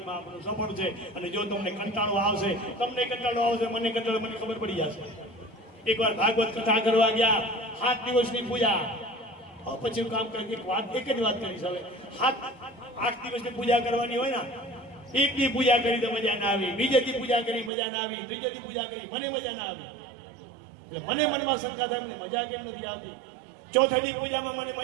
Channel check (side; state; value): left; drops out; at 17.7 s